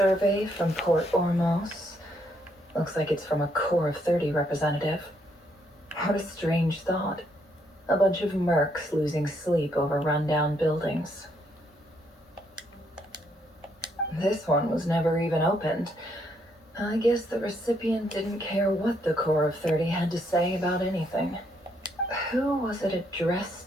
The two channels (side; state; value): both; normal; correlation 0.73